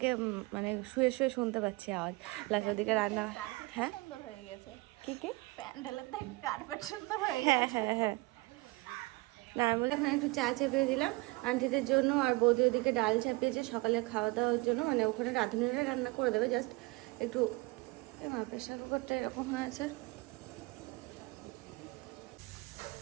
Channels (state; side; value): quieter; left; 24.3 dB